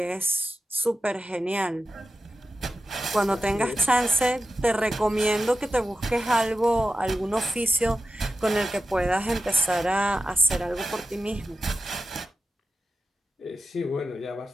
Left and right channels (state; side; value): normal; both; correlation 0.92